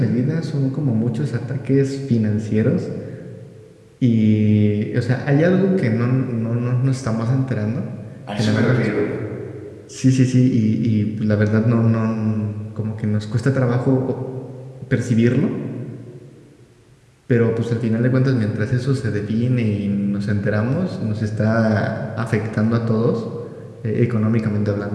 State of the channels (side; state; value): both; identical; correlation 1.00